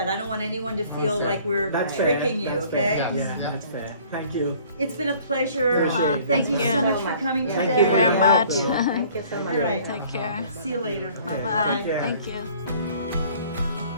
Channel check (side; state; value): both; inverted; correlation -0.54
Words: I don't want anyone to feel like we're That's fair. tricking you, That's okay? fair. Yeah, that's fair. Thank you. It's been a pleasure. Appreciate it. Thank you Thank so you. much for coming Yeah. today. Thank you very much. Thank you so much. All right. Take care. See you later. Bye bye. care. Thank you.